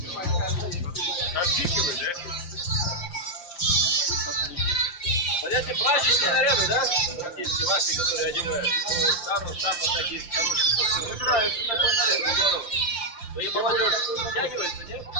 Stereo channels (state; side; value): late; right; 5.8 ms